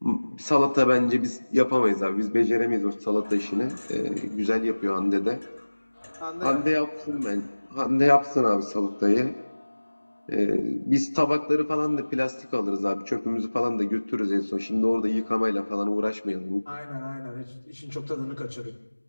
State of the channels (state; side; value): inverted; both; correlation -1.00